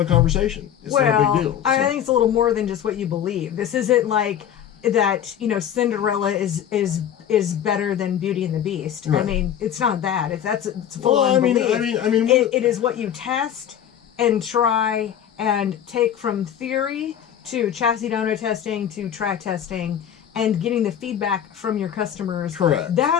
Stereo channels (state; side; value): quieter; right; 9.7 dB